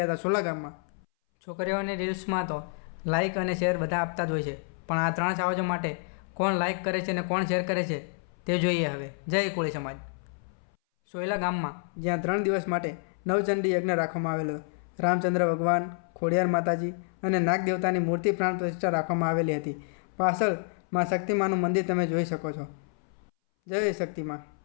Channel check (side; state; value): right; silent; 59 dB below the other